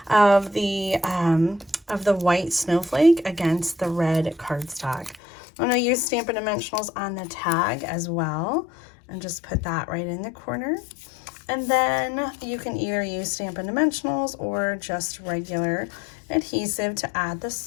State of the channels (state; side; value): drops out; right; at 5.2 s